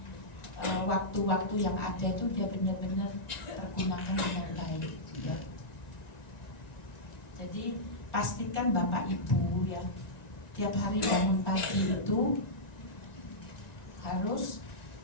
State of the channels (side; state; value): right; late; 1.9 ms